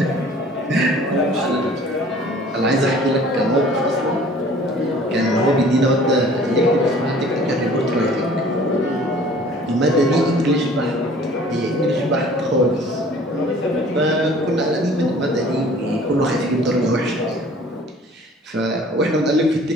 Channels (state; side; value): normal; both; correlation 0.50